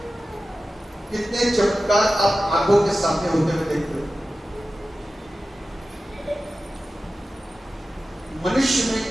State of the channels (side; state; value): both; normal; correlation 0.94